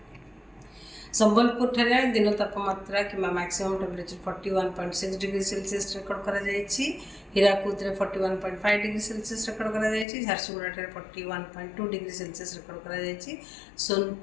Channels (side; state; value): right; drops out; at 10.1 s